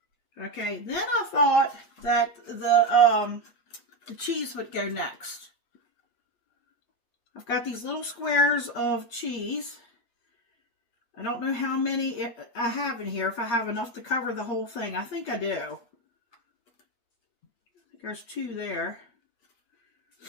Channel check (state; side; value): late; right; 8.7 ms